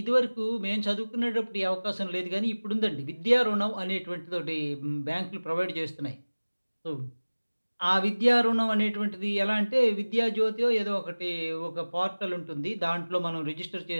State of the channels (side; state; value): both; inverted; correlation -1.00